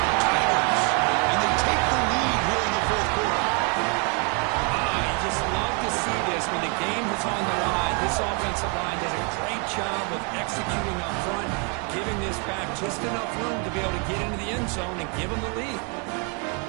Tigers. And they take the lead here in the 4th quarter. You just love to see this when the game is on the line. This offensive line does a great job of executing up front, giving this back just enough room to be able to get into the end zone and give them the lead.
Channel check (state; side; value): quieter; left; 35.5 dB